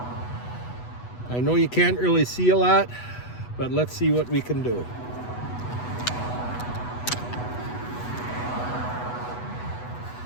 But let's see what we can do.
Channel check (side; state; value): right; late; 8.1 ms